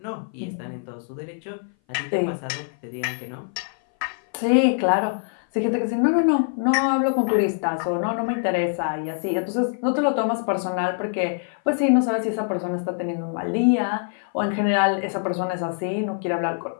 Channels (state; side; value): silent; right; 58 dB below the other